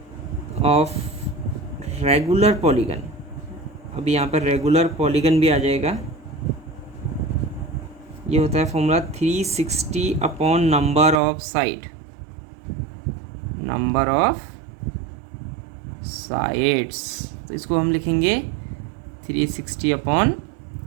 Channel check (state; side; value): drops out; left; at 11.2 s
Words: of regular polygon. अभी यहाँ पर regular polygon भी आ जाएगा. ये होता है formula 360 upon number of side, number of sides. तो इसको हम लिखेंगे 360 अपॉन